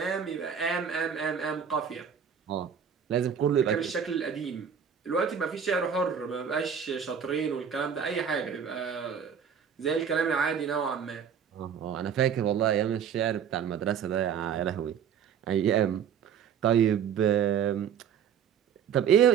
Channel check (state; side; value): quieter; left; 7.8 dB